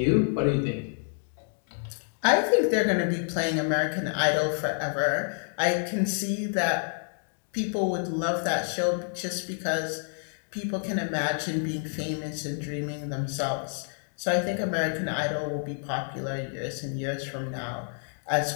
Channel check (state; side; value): silent; right; 56 dB below the other